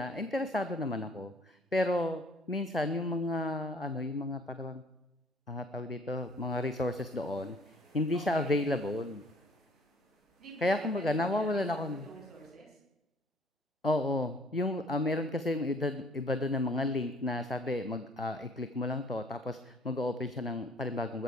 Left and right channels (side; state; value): both; normal; correlation 0.57